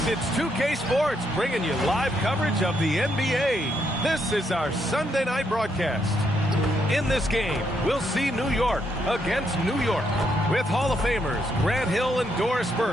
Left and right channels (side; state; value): both; normal; correlation 0.77